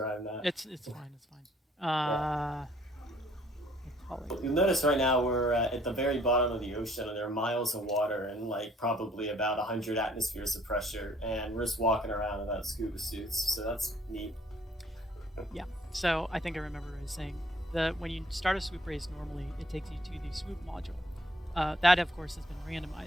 I'm not. It's fine. It's fine. You'll notice right now we're at the very bottom of the ocean, and there are miles of water and like probably about 100 atmospheres of pressure, and we're just walking around without scuba suits, so that's neat. Yeah. So I think I remember what I was saying. When you start a swoop race normally, it takes you to the swoop module. That of course has been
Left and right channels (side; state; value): both; normal; correlation 0.61